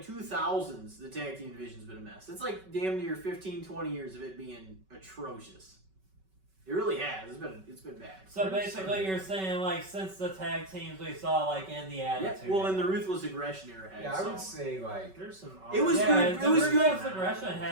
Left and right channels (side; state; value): left; late; 5.3 ms